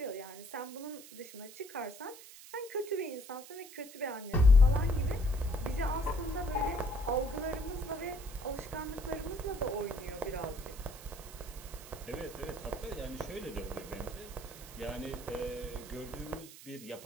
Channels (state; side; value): noise; right; hiss, 16 dB below the sound